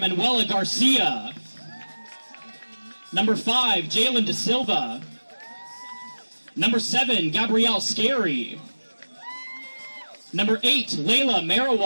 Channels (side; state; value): both; inverted; correlation -1.00